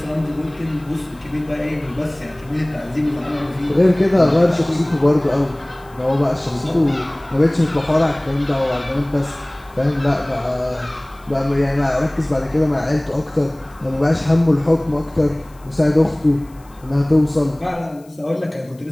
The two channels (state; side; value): noise; left; hiss, 29 dB below the sound